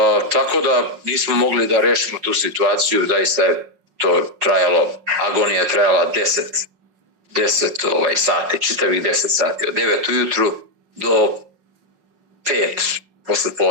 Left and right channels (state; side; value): late; left; 5.5 ms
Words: Tako da nismo mogli da rešimo tu situaciju, zaista je to trajalo, agonija je trajala 10 sati, čitavih 10 sati, od 9 ujutru do 5 posle